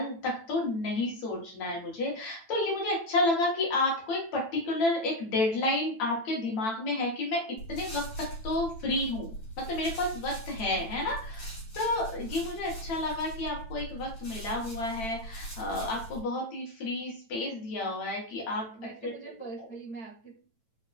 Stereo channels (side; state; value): right; late; 9.0 ms